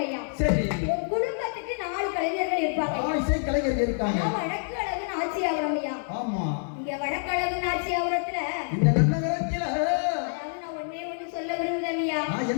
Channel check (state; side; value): silent; right; 60 dB below the other